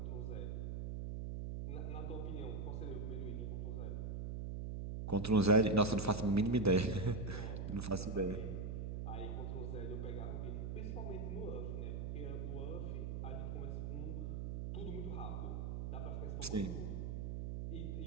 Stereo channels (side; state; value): right; noise; hum, 3 dB below the sound